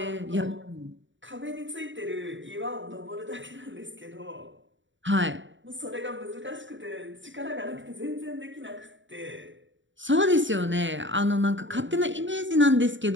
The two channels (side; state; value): left; late; 0.55 ms